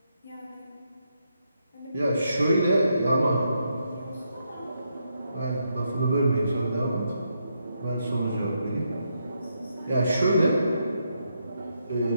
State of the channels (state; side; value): inverted; both; correlation -0.80